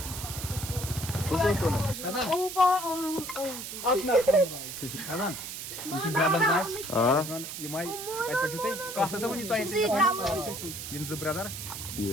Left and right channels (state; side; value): noise; right; hiss, 8 dB below the sound